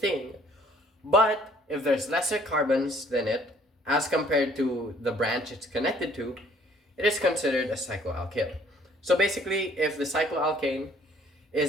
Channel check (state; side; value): normal; both; correlation 0.60